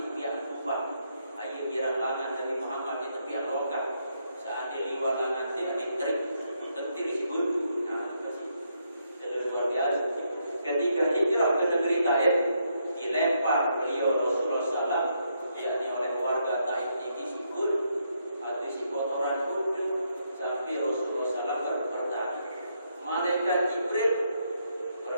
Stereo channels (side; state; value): both; inverted; correlation -0.77